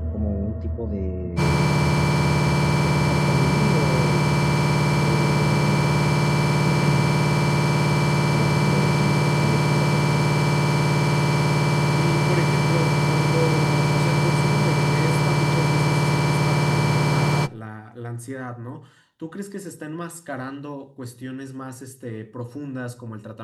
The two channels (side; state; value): both; identical; correlation 1.00